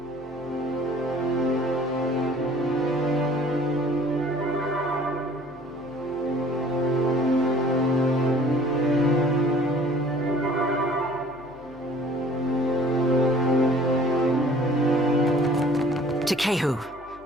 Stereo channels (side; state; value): left; noise; hum, 25 dB below the sound